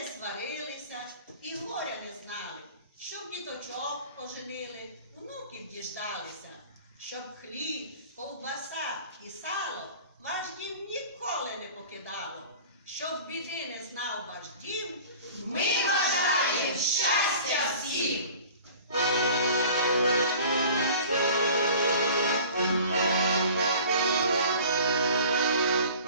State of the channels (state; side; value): inverted; both; correlation -0.44